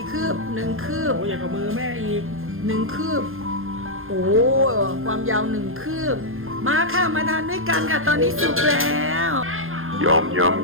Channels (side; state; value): left; late; 0.60 ms